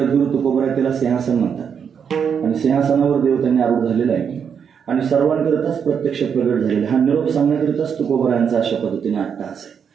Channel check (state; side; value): quieter; left; 7.2 dB